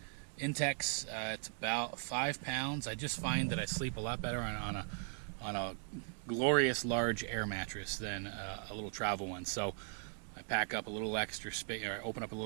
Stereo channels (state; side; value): silent; left; 52 dB below the other